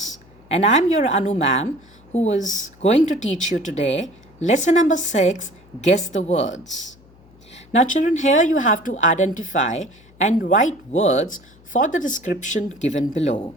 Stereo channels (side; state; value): left; noise; hum, 27 dB below the sound